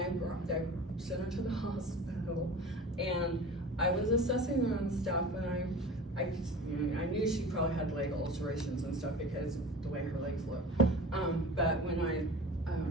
sent her to the hospital. And I was assessing her and stuff, and I knew she probably had leg ulcerations and stuff because of the way her legs look. But when I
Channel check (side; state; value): both; normal; correlation 0.37